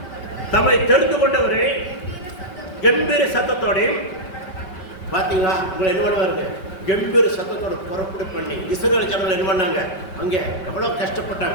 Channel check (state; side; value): late; right; 5.2 ms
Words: தம்மை தெரிந்து கொண்டவரை கம்பீர சத்தத்தோடையும். பாத்தீங்களா? உங்களை என்ன பண்ணுவாருங்க, கம்பீர சத்தத்தோட புறப்படு பண்ணி இஸ்ரவேல் ஜனங்கள் என்ன பண்ணாங்க, அங்கே எவ்வளவு